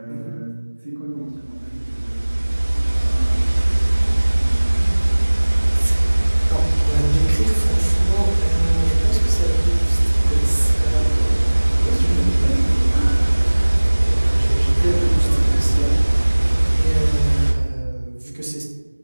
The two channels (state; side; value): inverted; both; correlation -1.00